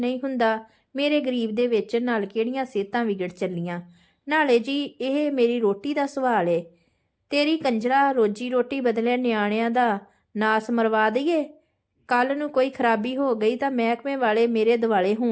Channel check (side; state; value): both; identical; correlation 1.00